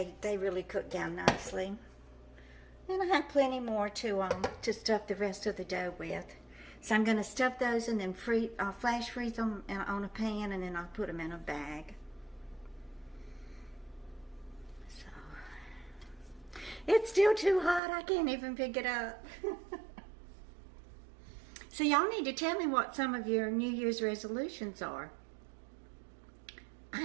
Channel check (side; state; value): left; drops out; at 17.8 s